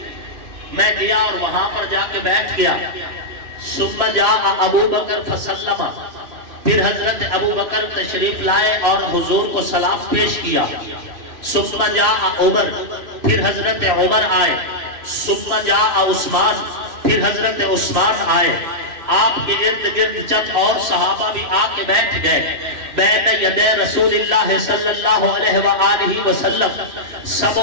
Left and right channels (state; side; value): late; left; 3.0 ms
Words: میں گیا اور وہاں پر جا کے بیٹھ گیا. ثم جاء ابو بکر فسلم، پھر حضرت ابو بکر تشریف لائے اور حضور کو سلام پیش کیا. ثم جاء عمر، پھر حضرت عمر آئے. ثم جاء عثمان، پھر حضرت عثمان آئے. آپ کے ارد گرد چند اور صحابہ بھی آ کے بیٹھ گئے. بین یدی رسول اللہ صلی اللہ علیہ وآلہ وسلم